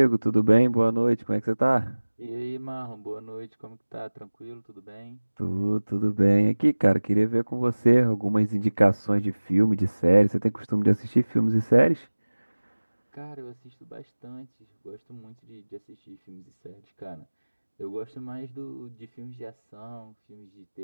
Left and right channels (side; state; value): both; inverted; correlation -1.00